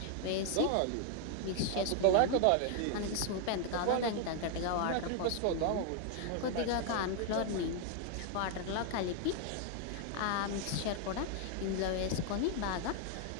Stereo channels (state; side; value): different; both; correlation 0.00